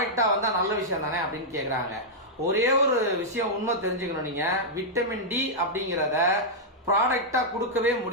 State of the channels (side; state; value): both; normal; correlation -0.07